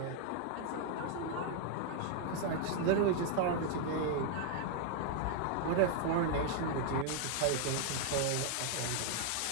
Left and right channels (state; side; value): different; both; correlation 0.00